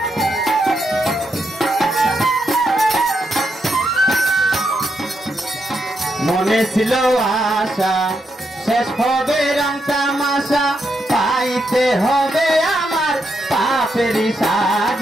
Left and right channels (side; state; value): both; normal; correlation 0.81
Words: মনে ছিল আশা শেষ হবে রং তামাশা পাইতে হবে আমার পাপেরই